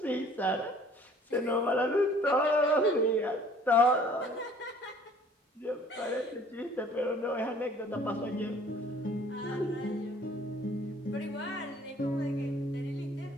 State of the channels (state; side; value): normal; both; correlation 0.54